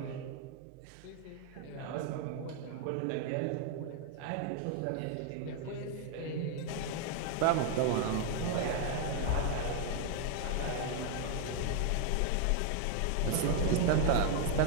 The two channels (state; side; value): different; both; correlation 0.00